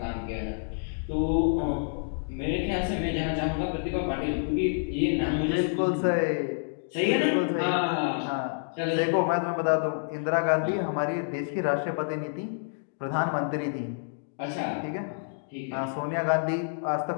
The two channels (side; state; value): right; silent; digital silence